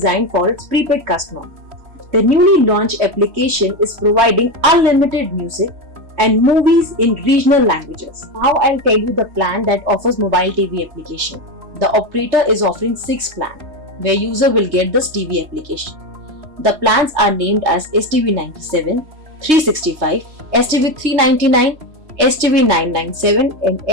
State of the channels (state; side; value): late; left; 3.2 ms